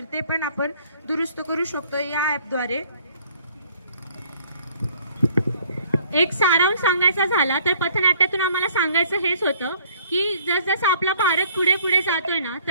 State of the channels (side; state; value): both; inverted; correlation -0.58